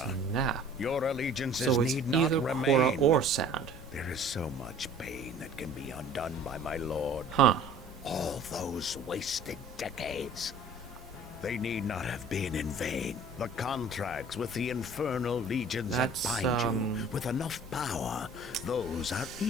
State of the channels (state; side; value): normal; both; correlation 0.49